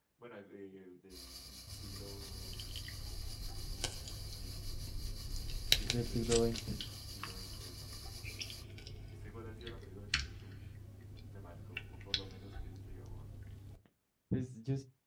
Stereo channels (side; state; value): both; identical; correlation 1.00